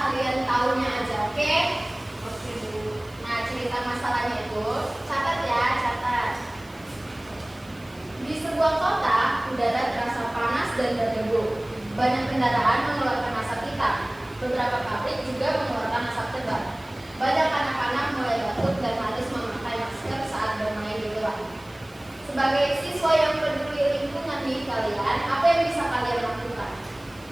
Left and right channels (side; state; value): right; noise; hiss, 27 dB below the sound